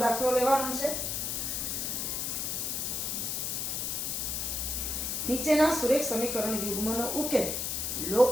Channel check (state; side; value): noise; left; hiss, 1 dB below the sound